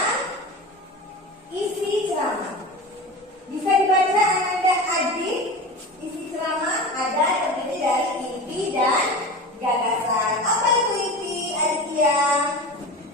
isi ceramah. Bisa dibaca Anda adik. Isi ceramah ada terdiri dari inti dan gagasan. Apa itu inti, Aditya?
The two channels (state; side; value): normal; both; correlation 0.31